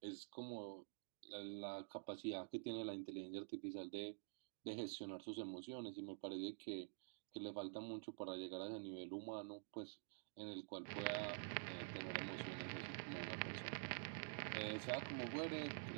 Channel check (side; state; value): left; silent; digital silence